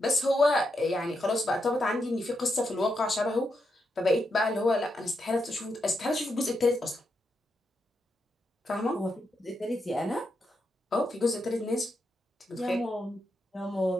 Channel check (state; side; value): normal; both; correlation 0.83